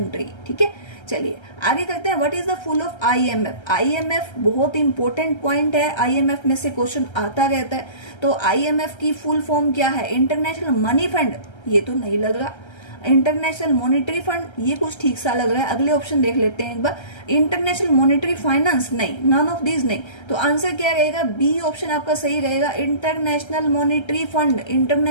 ठीक है, चलिए आगे करते हैं। What is the full of IMF, IMF बहुत इंपॉर्टेंट पॉइंट है, आईएमएफ में से क्वेश्चन आता रहता है। तो आईएमएफ की फुल फॉर्म क्या है, इंटरनेशनल मनी फंड, ये तो नहीं लग रहा। इंटरनेशनल मॉनिटरी फंड, ये कुछ ठीक सा लग रहा है। अगले ऑप्शन देख लेते हैं एक बार। इंटरनेशनल मॉनिटरी फाइनेंस, नहीं, नन ऑफ दीज नहीं। तो आंसर क्या रहेगा, बी ऑप्शन आपका सही रहेगा, international monetary fund.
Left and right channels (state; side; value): late; right; 1.3 ms